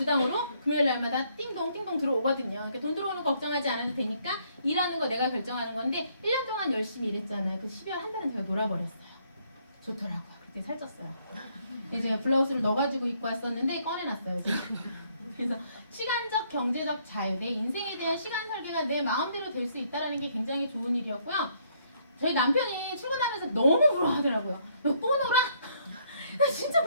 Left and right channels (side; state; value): both; inverted; correlation -0.68